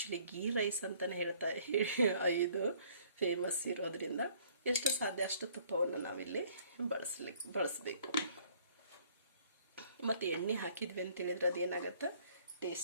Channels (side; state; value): both; inverted; correlation -0.59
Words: ಗೀ ರೈಸ್ ಅಂತಲೇ ಇದು ಫೇಮಸ್ ಇರೋದ್ರಿಂದ ಎಷ್ಟು ಸಾಧ್ಯ ಅಷ್ಟು ತುಪ್ಪವನ್ನು ನಾವಿಲ್ಲಿ ಬಳಸಬೇಕು. ಮತ್ತು ಎಣ್ಣೆ ಹಾಕಿದ್ವಿ ಅಂತೇಳಿದ್ರೆ ಅದೇನಾಗತ್ತೆ,